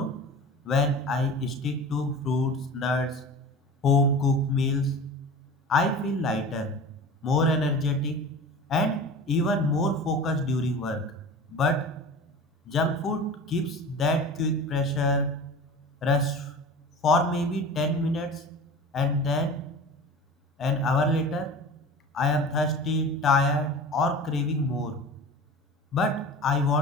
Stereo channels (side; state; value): both; normal; correlation 0.36